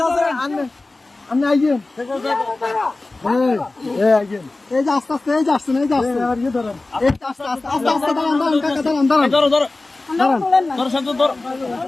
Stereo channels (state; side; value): quieter; right; 3.2 dB